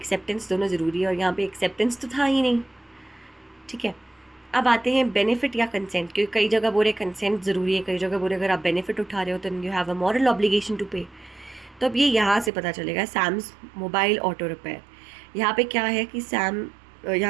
दोनों ज़रूरी है, और यहाँ पे एक्सेप्टेंस तो था ही नहीं। ठीक है, अब आते हैं बेनिफिट या कंसेंट, क्योंकि कई जगह बोले कंसेंट ज़रूरी है, कई जगह बोले अगर आप बेनिफिट उठा रहे हो तो you have a moral obligation to pay. तो अब ये यहाँ से पता चलेगा। सैम्स मोबाइल ऑटो रिपेयर, यहाँ पे क्या है कि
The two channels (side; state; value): left; drops out; at 12.5 s